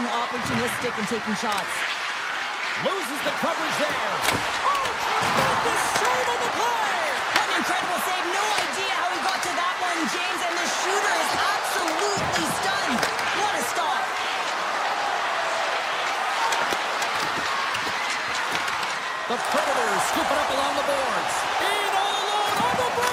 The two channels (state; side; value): identical; both; correlation 1.00